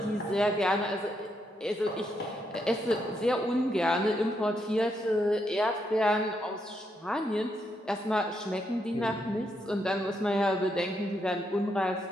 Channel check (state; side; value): normal; both; correlation 0.79